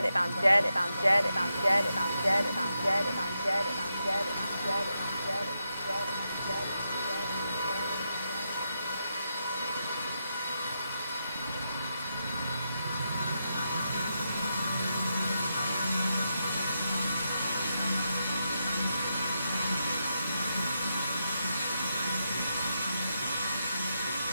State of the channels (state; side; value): inverted; both; correlation -0.85